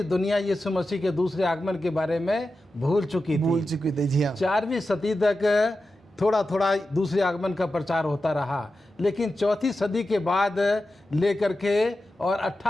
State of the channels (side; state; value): both; normal; correlation 0.92